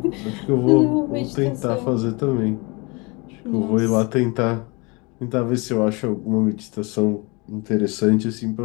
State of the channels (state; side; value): quieter; right; 28.2 dB